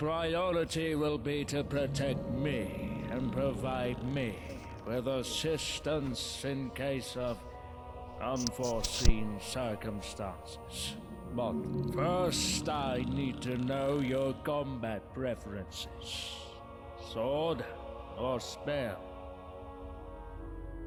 will be to protect me and provide me with assistance in case of unforeseen circumstances. But first I need to know your combat preferences. Sword or spell?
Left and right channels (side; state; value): both; identical; correlation 1.00